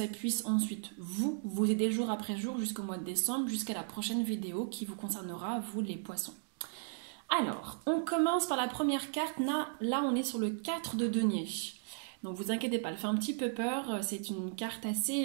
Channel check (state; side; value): silent; left; digital silence